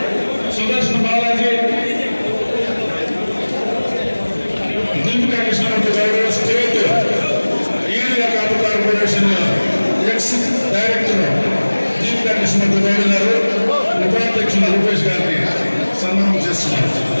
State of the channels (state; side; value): inverted; both; correlation -1.00